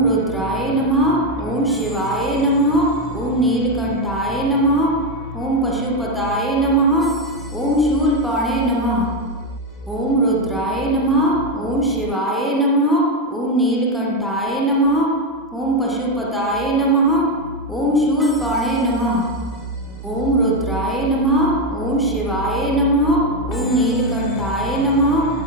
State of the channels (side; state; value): both; normal; correlation 0.08